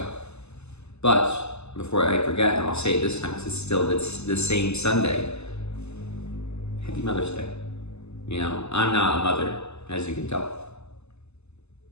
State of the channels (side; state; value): right; late; 0.80 ms